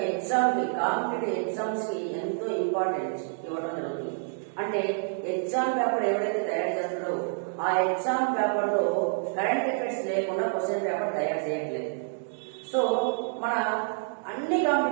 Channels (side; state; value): left; silent; digital silence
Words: ఎగ్జామ్ కి, కాంపిటేటివ్ ఎగ్జామ్స్ కి ఎంతో ఇంపార్టెన్స్ ఇవ్వడం జరుగుతుంది. అంటే ఎగ్జామ్ పేపర్ ఎవరైతే తయారు చేస్తారో ఆ ఎగ్జామ్ పేపర్ లో కరెంట్ అఫైర్స్ లేకుండా క్వశ్చన్ పేపర్ తయారు చేయట్లేదు. సో మన అన్ని